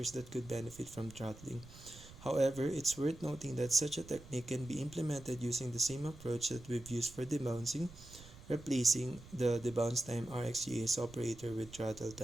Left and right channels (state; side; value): noise; right; rumble, 18 dB below the sound